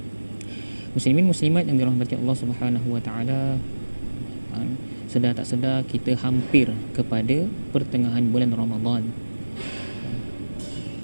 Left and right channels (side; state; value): both; inverted; correlation -1.00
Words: Muslimin muslimat yang dirahmati Allah Subhanahu wa taala, sedar tak sedar kita hampir kepada pertengahan bulan Ramadan.